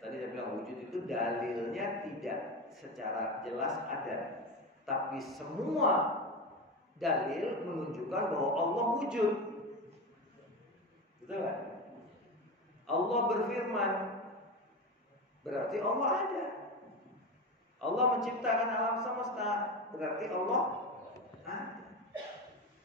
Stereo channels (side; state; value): both; normal; correlation 0.21